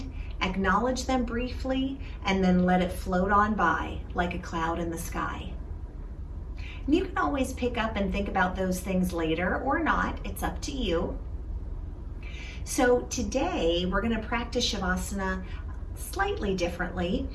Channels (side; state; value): both; identical; correlation 1.00